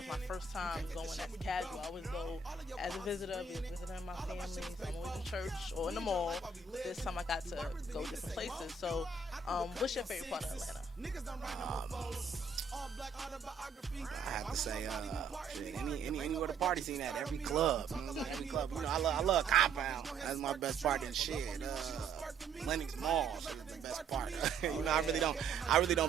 my first time going as casual. I always go as a visitor, visiting my family. So I'm always in church or in the mall. This time I got to go different places. So, what's your favorite part of Atlanta? I have to say, shit, anywhere the party scene at, every club, every club. I love Compound. That's my best part and shit. Lennox Mall is the best part. I really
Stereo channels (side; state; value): left; quieter; 4.9 dB